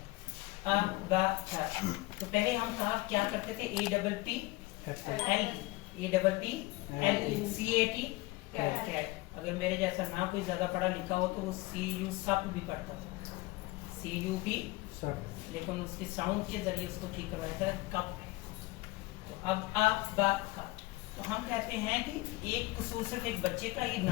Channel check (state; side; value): quieter; right; 21.0 dB